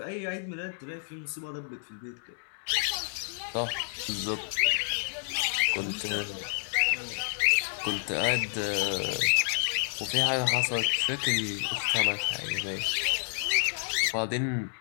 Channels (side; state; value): right; silent; digital silence